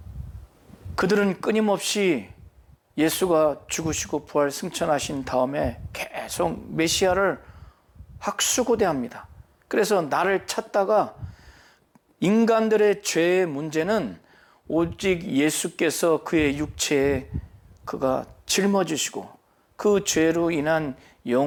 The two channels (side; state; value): both; identical; correlation 1.00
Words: 그들은 끊임없이 예수가 죽으시고 부활 승천하신 다음에 계속 메시아를 학수고대합니다. 그래서 나를 찾다가, 인간들의 죄의 문제는 오직 예수께서 그의 육체에 그가 짊어지시고 그 죄로 인한